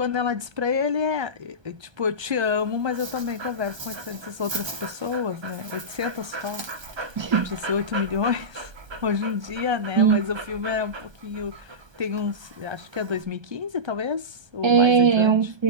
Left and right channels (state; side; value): late; left; 1.3 ms